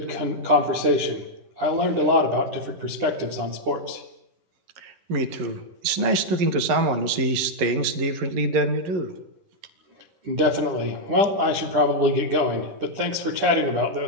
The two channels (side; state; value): left; late; 11 ms